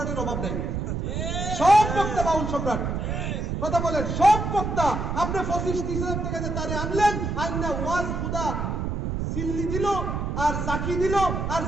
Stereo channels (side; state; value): right; noise; rumble, 2 dB below the sound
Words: অভাব নাই। সব বক্তা বাউল সম্রাট। কথা বলেন, সব বক্তা। আপনি 25-30 টাকা দিয়ে তারে আনলেন, আইনা ওয়াজ খুদা সিল্লি দিল আর জাকি দিল আর